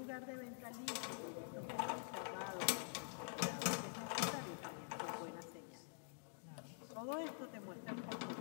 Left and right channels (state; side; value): silent; right; digital silence